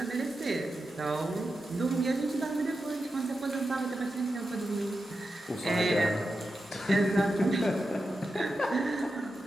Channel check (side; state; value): both; normal; correlation 0.90